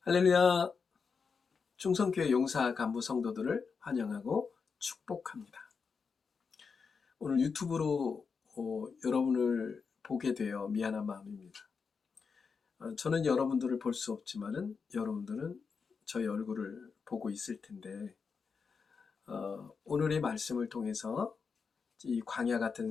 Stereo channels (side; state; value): right; quieter; 5.4 dB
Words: 할렐루야. 충성교회 용사 간부 성도들을 환영하고 축복합니다. 오늘 유튜브로 여러분을 보게 되어 미안한 마음입니다. 저는 여러분들을 볼 수 없지만은 여러분들은 저의 얼굴을 보고 있을 텐데, 오늘의 말씀을 통해서 이 광야 같은